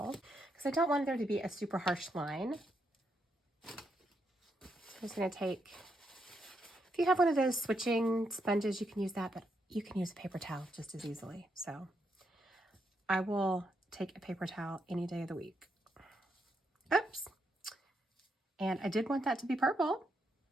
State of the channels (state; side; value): normal; both; correlation 0.80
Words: because I don't want there to be a super harsh line. So I'm just going to take, if you have one of those switching sponges, you can use that, but you can use a paper towel just as easily. So I will take a paper towel any day of the week. Oops. And I did want that to be purple,